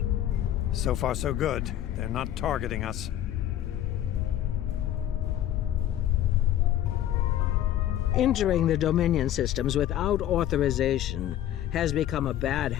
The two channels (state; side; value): quieter; right; 11.9 dB